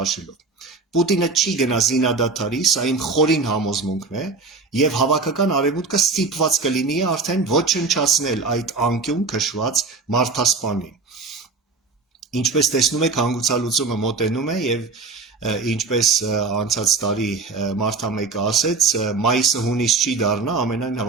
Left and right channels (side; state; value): left; quieter; 4.1 dB